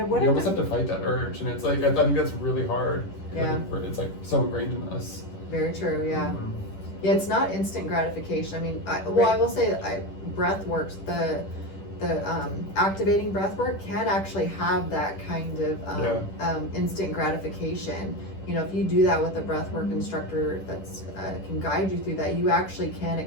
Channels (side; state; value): right; late; 10 ms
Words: almost have to fight that urge, and it's like, I think that's really hard. It's like so ingrained in us. Very true. Yeah, it's not instant gratification. I mean, I will say breath works, the activating breath work can actually have that kind of instant gratification. if you do that with a breathwork instructor that's can guide you through that, you actually can